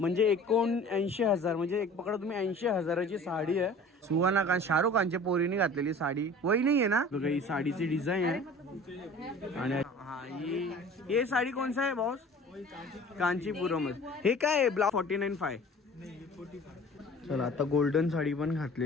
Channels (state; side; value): normal; both; correlation 0.44